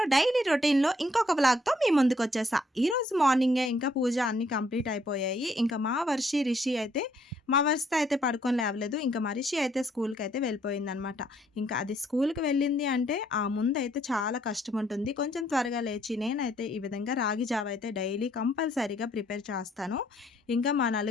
daily routine లో ఇంకొక vlog తో మీ ముందుకు వచ్చేసా. ఈ రోజు మార్నింగే ఇంకా పూజ అన్ని కంప్లీట్ అయిపోయాయి. ఇంకా మా రిషి అయితే మా వర్షతో అయితే పడుకొని లేవలేదు. ఇంకా మా రిషి అయితే స్కూల్కి అయితే వెళ్ళిపోయింది అనమాట. ఇంకా అది స్కూల్కి వెళ్ళింది అంటే ఆ ముందు అయితే చాలా కష్టం ఉంటుంది. కొంచెం త్వరగా లేచి నేనైతే ఈ విధంగా రాగి జావ అయితే డైలీ కంపల్సరీగా ప్రిపేర్ చేస్తాను. ఇంకా మా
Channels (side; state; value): both; normal; correlation 0.68